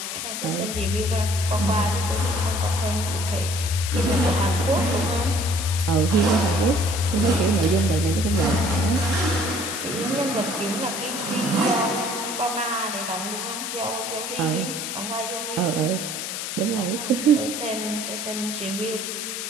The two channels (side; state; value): left; noise; hiss, 5 dB below the sound